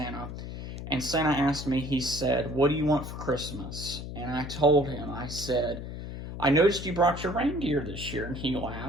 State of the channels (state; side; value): noise; left; hum, 8 dB below the sound